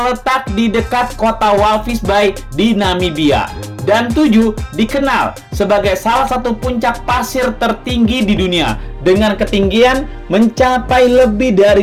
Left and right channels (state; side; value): identical; both; correlation 1.00